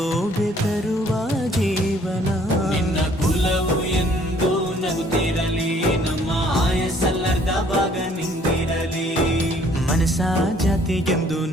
ತರುವ ಜೀವನ. ನಿನ್ನ ಕುಲವು ಎಂದು ನಗುತ್ತಿರಲಿ, ನಮ್ಮ ಆಯಸ್ಸಲ್ಲರ್ಧ ಭಾಗ ನಿಂದಿರಲಿ. ಮನಸ ಜಾತಿಗೆಂದು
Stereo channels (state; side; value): normal; both; correlation 0.60